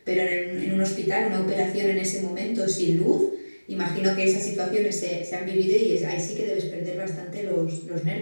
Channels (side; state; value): both; inverted; correlation -1.00